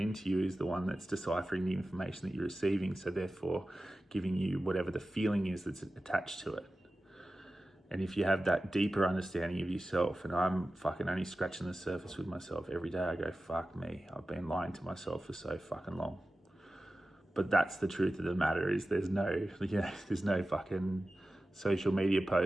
you is the one that's deciphering the information that you're receiving, so therefore giving you whatever the feeling is that's attached to it. And if you have that deeper understanding of yourself, and I'm fucking only scratching the surface with myself every day, I go, fuck me, I've been lying to myself for so fucking long. But that's the truth of the matter, is there's no fucking social media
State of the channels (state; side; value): normal; both; correlation 0.94